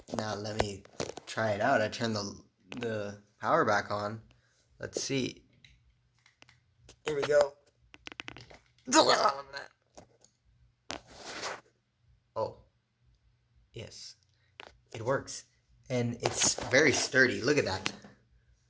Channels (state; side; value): identical; both; correlation 1.00